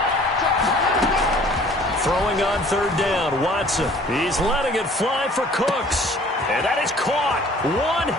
Throwing on 3rd down, Watson. He's letting it fly for Cooks. And that is caught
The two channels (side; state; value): both; normal; correlation 0.52